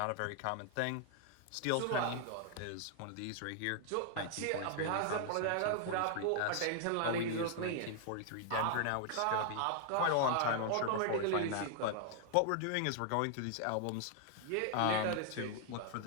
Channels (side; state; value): both; different; correlation 0.00